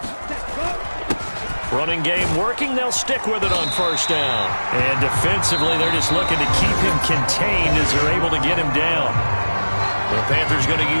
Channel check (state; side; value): inverted; both; correlation -1.00